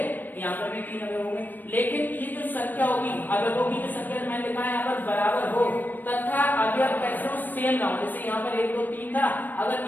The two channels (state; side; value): late; right; 0.089 ms